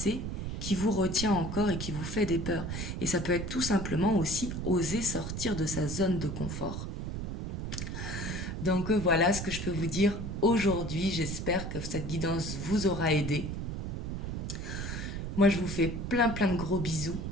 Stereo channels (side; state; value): right; noise; rumble, 4 dB below the sound